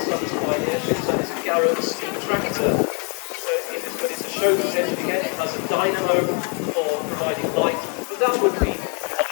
Sons Pioneership, so this is Garrett's steam tractor. So but it's a chauffeur's engine again, it has a dynamo for providing light, but that would be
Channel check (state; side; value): quieter; right; 37.0 dB